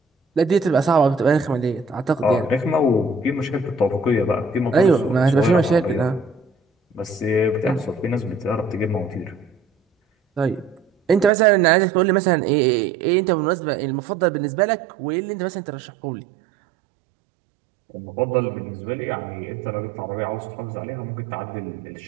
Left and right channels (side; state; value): left; drops out; at 11.3 s